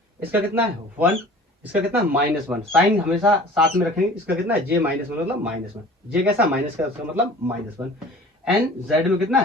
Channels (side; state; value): both; normal; correlation 0.45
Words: इसका कितना है 1, इसका कितना है -1। साइन हमेशा साथ में रखेंगे। इसका कितना है जे -1 मतलब -1, जे कैसा माइनस का, उसका मतलब -1, एंड जेड में कितना